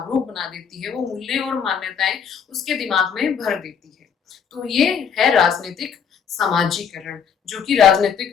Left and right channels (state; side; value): quieter; right; 7.1 dB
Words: बना देती है। वो मूल्य और मान्यताएं उसके दिमाग में भर देती है। तो ये है राजनीतिक समाजीकरण, जो कि